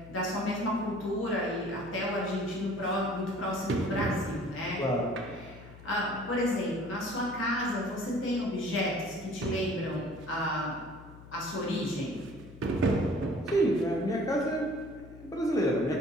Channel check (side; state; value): left; noise; hum, 17 dB below the sound